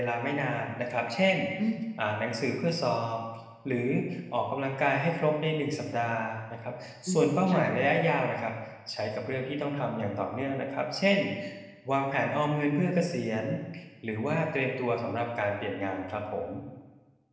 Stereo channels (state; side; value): identical; both; correlation 1.00